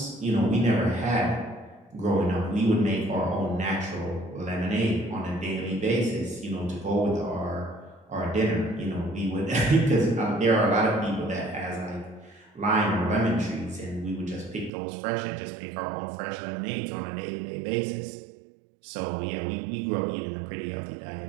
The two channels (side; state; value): left; drops out; at 14.7 s